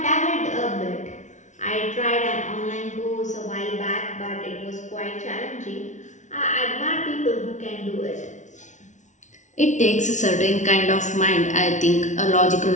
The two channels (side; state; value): right; late; 0.36 ms